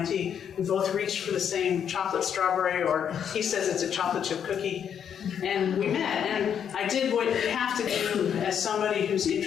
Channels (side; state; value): right; quieter; 8.3 dB